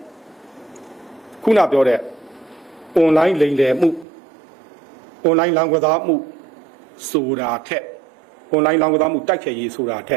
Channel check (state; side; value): drops out; left; at 4.0 s